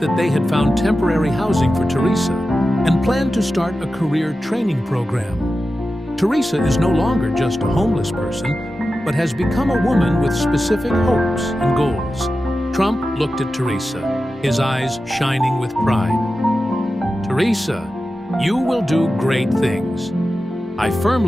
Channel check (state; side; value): normal; both; correlation 0.93